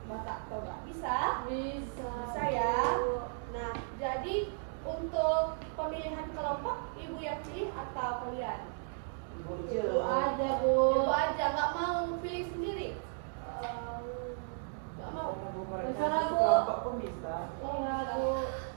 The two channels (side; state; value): left; silent; digital silence